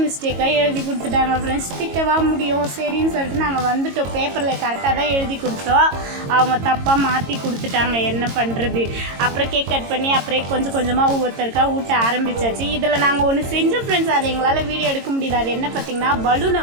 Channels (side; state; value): left; late; 22 ms